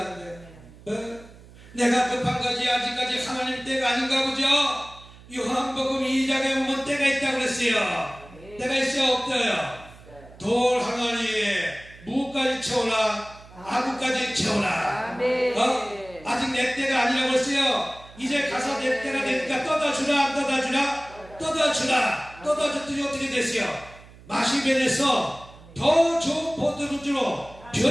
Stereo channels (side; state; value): right; noise; hum, 21 dB below the sound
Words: 내가 급한 거지 아직까지 하나님 때가 아닌가 보죠? 요한복음 2장에 보면 때가 있다고 그랬어요. 때가 있어요 없어요? 돌 항아리에 무까지 채우라 아구까지 채우라. 아직 내 때가 아니라고 했어요. 이제 가서 내 때가 되니까 떠다주라 안 떠다주라? 떠다줬더니 어떻게 됐어요? 맛이 변해서 더 좋은 포도주로